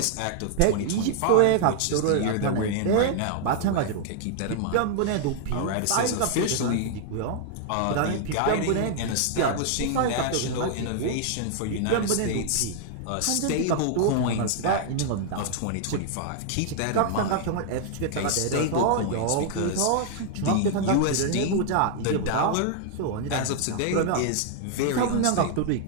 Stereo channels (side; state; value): both; different; correlation 0.00